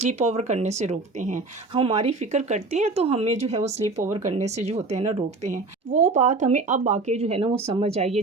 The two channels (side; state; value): left; quieter; 3.6 dB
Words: اوور کرنے سے روکتے ہیں، ہماری فکر کرتے ہیں تو ہمیں جو ہے وہ سلیپ اوور کرنے سے جو ہوتے ہیں نا روکتے ہیں۔ وہ بات ہمیں اب آ کے جو ہے نا وہ سمجھ آئی ہے